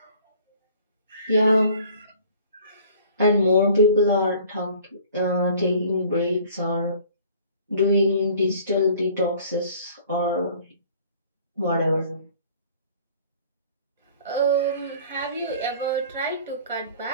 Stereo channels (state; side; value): inverted; both; correlation -0.51